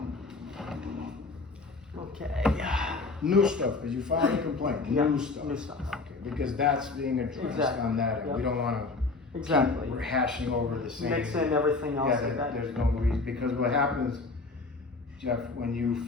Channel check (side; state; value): right; quieter; 3.7 dB